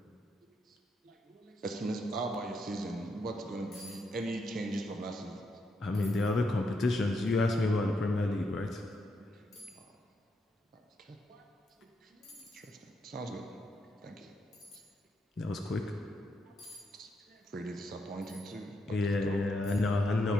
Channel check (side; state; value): both; normal; correlation 0.80